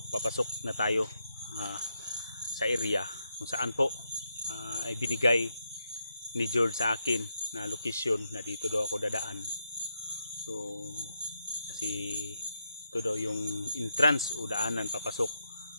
papasok na tayo sa area kung saan po ay binigay ni George sa akin na location na dito daw ako dadaan. So kasi ito daw yung entrance o daanan papasok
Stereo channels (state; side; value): inverted; both; correlation -0.81